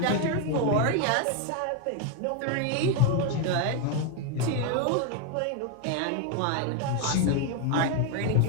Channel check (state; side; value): different; both; correlation 0.01